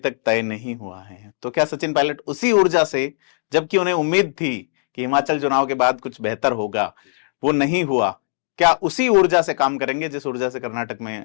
तय नहीं हुआ है। तो क्या सचिन पायलट उसी ऊर्जा से, जबकि उन्हें उम्मीद थी कि हिमाचल चुनाव के बाद कुछ बेहतर होगा, वो नहीं हुआ, क्या उसी ऊर्जा से काम करेंगे जिस ऊर्जा से कर्नाटक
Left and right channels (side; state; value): right; silent; digital silence